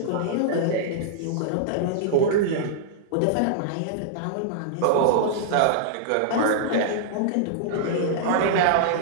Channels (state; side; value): different; both; correlation -0.01